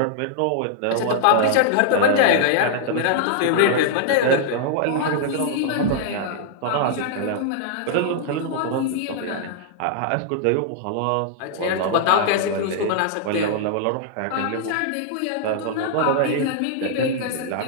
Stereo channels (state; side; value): different; both; correlation -0.01